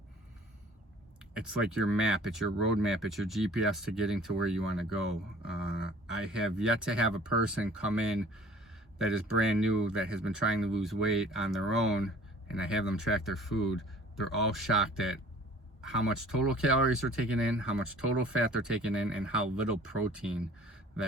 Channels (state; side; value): normal; both; correlation 0.50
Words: It's like your map, it's your roadmap, it's your GPS to getting to where you want to go. I have yet to have a person come in that is brand new, that has been trying to lose weight on their own, and I have them track their food. They're all shocked at how much total calories they're taking in, how much total fat they're taking in, and how little protein